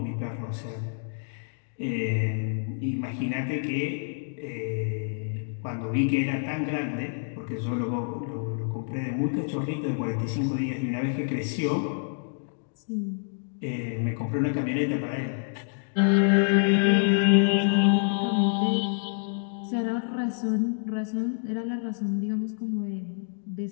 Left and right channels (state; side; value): silent; right; digital silence